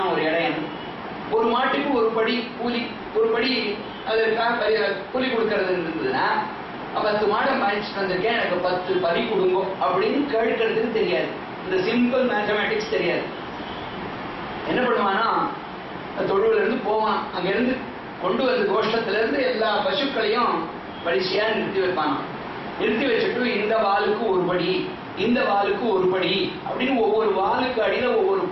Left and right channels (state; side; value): identical; both; correlation 1.00